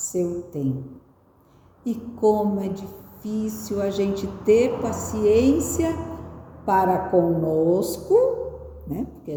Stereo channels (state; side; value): identical; both; correlation 1.00